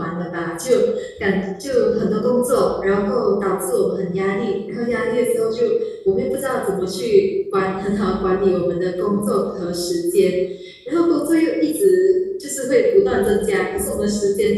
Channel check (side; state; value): both; identical; correlation 1.00